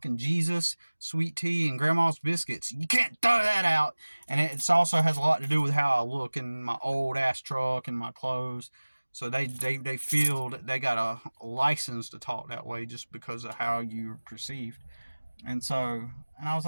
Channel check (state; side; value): inverted; both; correlation -1.00